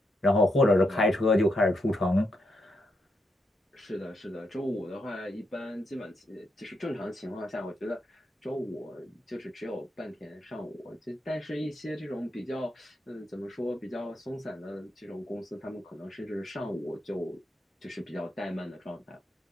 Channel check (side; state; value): both; normal; correlation 0.81